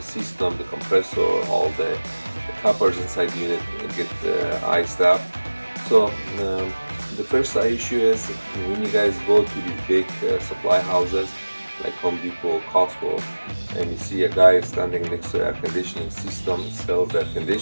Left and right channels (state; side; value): inverted; both; correlation -1.00